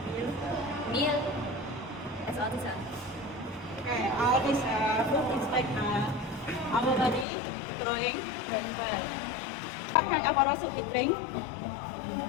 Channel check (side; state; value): right; drops out; at 7.2 s